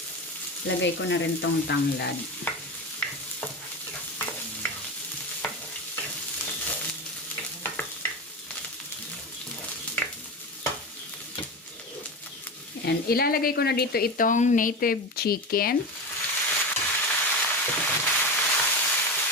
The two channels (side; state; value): both; normal; correlation 0.23